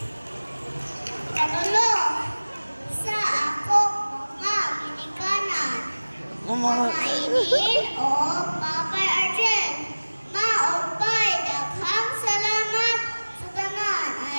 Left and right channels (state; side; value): inverted; both; correlation -1.00